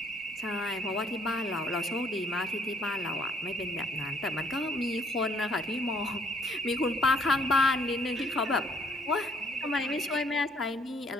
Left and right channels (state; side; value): normal; both; correlation 0.64